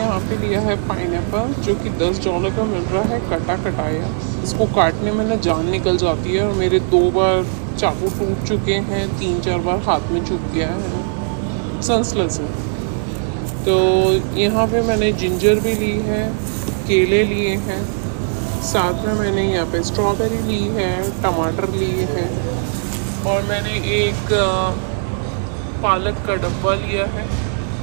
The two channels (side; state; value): left; silent; digital silence